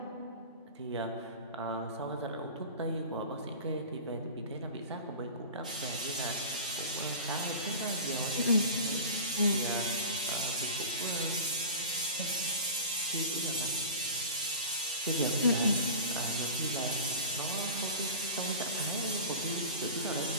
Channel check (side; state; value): both; inverted; correlation -0.35